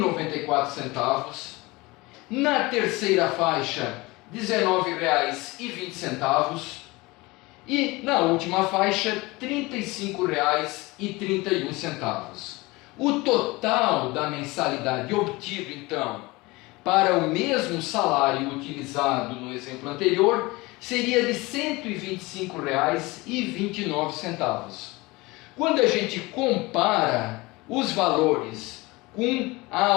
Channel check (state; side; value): quieter; right; 22.6 dB